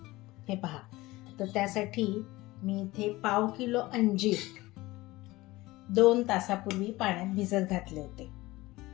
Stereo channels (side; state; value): right; quieter; 19.5 dB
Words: हे पहा, तर त्यासाठी मी इथे 1/2 किलो अंजीर 2 तासापूर्वी पाण्यात भिजत घातले होते.